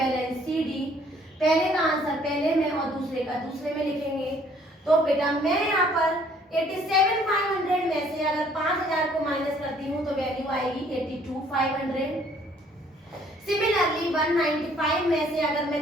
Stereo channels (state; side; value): normal; both; correlation 0.61